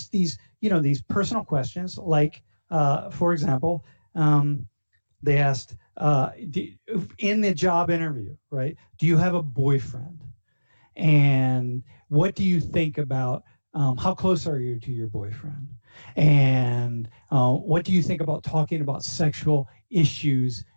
these personal questions, like, for example, they asked, in the job interview, right, do you have a boyfriend? And what do you think about, how close are you to your boyfriend? And what do you think about talking about sexual issues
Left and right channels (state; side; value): inverted; both; correlation -1.00